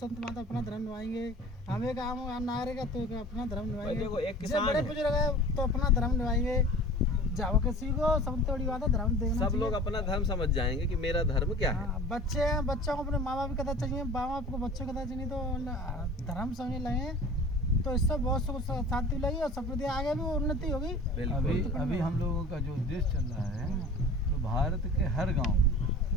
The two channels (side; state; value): both; normal; correlation 0.42